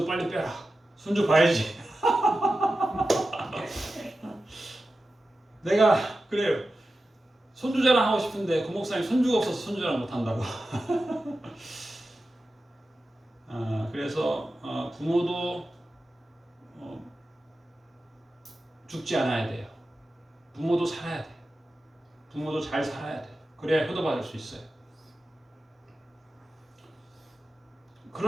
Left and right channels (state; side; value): normal; both; correlation 0.93